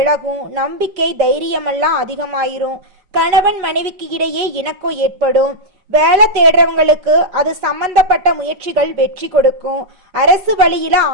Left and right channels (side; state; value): left; late; 5.4 ms